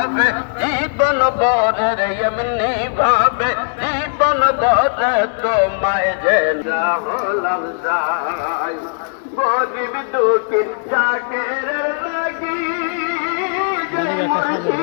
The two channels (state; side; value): silent; right; digital silence